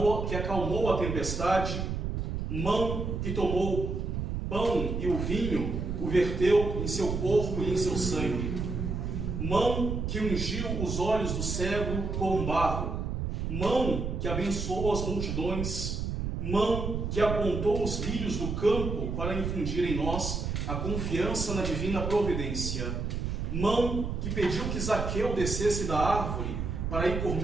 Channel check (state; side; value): noise; right; rumble, 3 dB below the sound